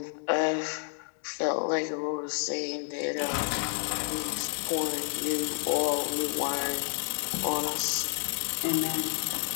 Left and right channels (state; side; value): silent; right; 58 dB below the other